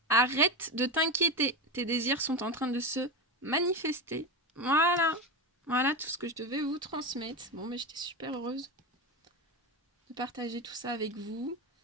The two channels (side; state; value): both; normal; correlation 0.17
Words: Arrête de t'inquiéter. Tes désirs sont en train de se manifester. Voilà. Voilà tout ce que je devais vous transmettre. Bon, mais j'étais super heureuse de partager tout ça avec vous.